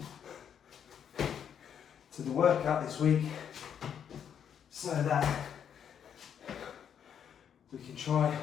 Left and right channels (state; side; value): quieter; right; 8.4 dB